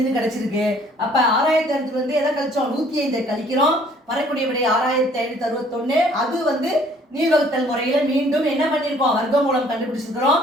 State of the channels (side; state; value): both; normal; correlation 0.58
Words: கிடைச்சிருக்கு. அப்ப 6500 எதை கழிச்சோம், 105 கழிக்கிறோம். வரக்கூடிய விடை 6561. அது நீள்வகுத்தல் முறையில மீண்டும் என்ன பண்ணிருக்கோம், வர்க்க மூலம் கண்டுபிடிச்சிருக்கிறோம்.